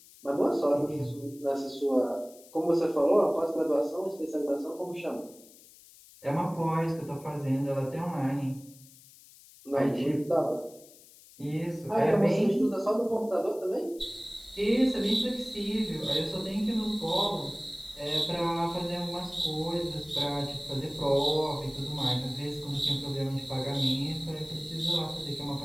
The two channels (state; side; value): noise; left; hiss, 23 dB below the sound